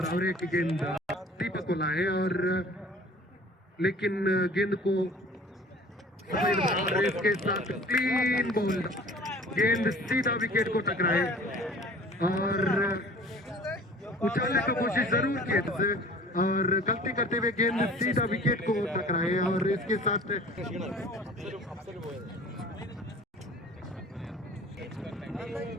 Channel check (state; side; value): normal; both; correlation 0.47